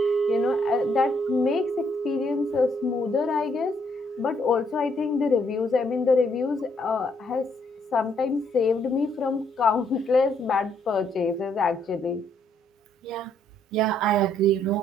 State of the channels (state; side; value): normal; both; correlation 0.70